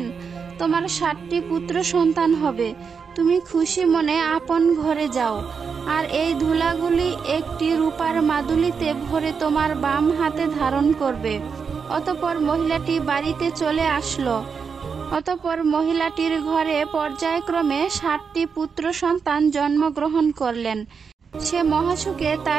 তোমার 60টি পুত্র সন্তান হবে। তুমি খুশি মনে আপন ঘরে যাও, আর এই ধুলাগুলি একটি রূপার মাদুলিতে ভরে তোমার বাম হাতে ধারণ করবে। অতঃপর মহিলাটি বাড়িতে চলে আসলো। অতঃপর মহিলাটির ঘরে পর্যায়ক্রমে 60টি পুত্র সন্তান জন্মগ্রহণ করলেন। সে মহাসুখে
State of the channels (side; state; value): left; quieter; 5.9 dB